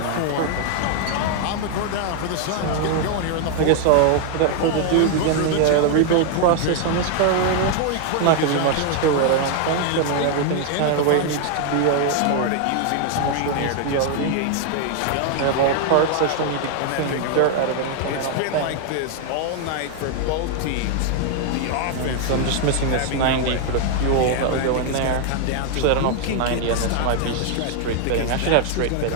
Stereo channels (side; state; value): both; different; correlation 0.00